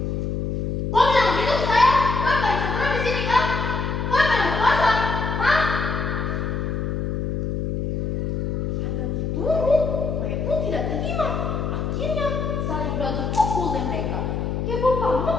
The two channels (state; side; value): noise; left; hum, 1 dB below the sound